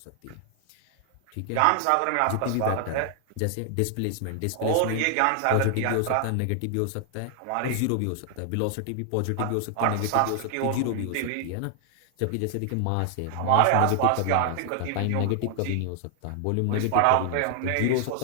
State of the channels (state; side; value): different; both; correlation 0.00